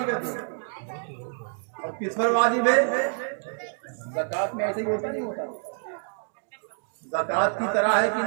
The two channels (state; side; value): silent; left; digital silence